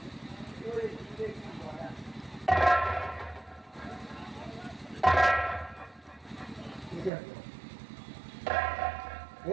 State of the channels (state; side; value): drops out; left; at 7.1 s